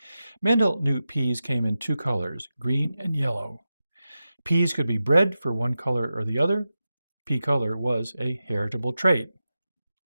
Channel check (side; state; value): both; inverted; correlation -0.92